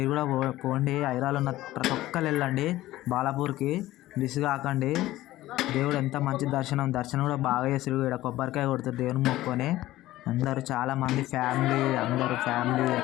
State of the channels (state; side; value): quieter; right; 16.0 dB